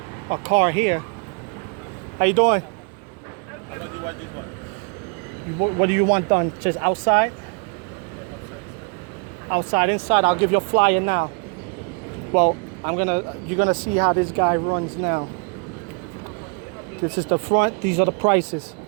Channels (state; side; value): quieter; left; 34.7 dB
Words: car here. How you doing? What do you want done? Just outside? Outside, inside. I'll give you a flyer now. Well, you're gonna see how this guy runs now. This is the front. These are the prices.